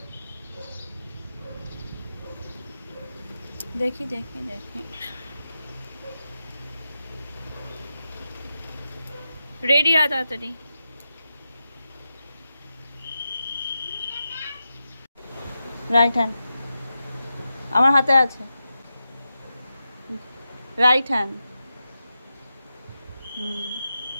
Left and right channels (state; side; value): inverted; both; correlation -0.90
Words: দেখি দেখি দেখি। রেডি আ তাড়াতাড়ি। রাইট হ্যান্ড আমার হাতে আছে। Right hand.